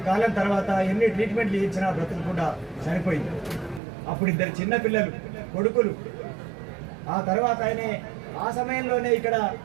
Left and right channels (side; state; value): left; drops out; at 3.8 s